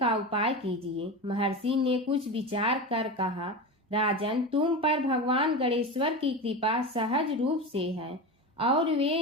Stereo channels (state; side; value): normal; both; correlation 0.24